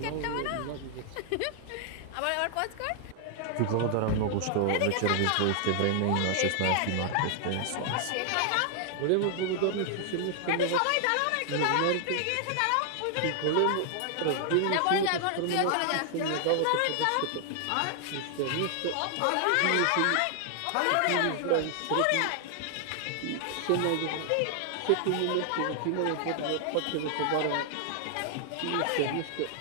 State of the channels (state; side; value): different; both; correlation 0.00